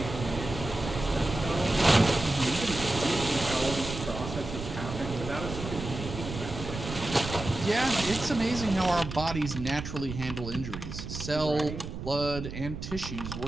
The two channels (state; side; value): noise; right; rumble, 8 dB below the sound